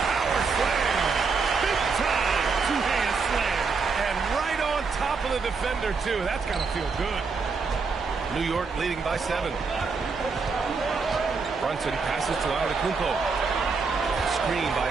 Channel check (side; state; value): left; quieter; 4.8 dB